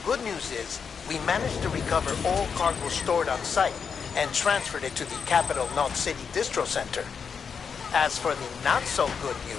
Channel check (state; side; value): quieter; right; 6.2 dB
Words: good news is, we managed to recover all cargo stored on site and transferred it to the Capital Knot City Distro Center. As for the not-so-good